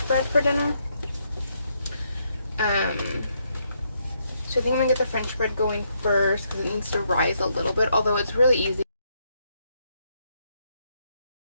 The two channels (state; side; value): inverted; both; correlation -0.76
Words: bread for dinner. So I think I'm gonna get the French bread going first because it needs to rise a little bit, although it's really easy.